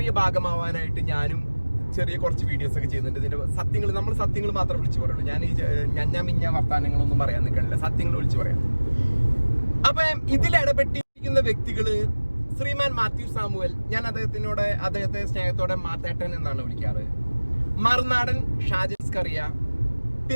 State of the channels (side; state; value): both; inverted; correlation -1.00